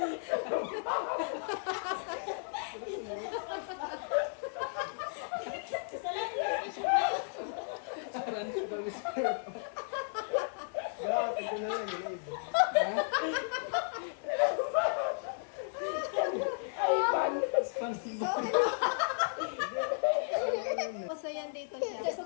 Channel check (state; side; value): silent; right; digital silence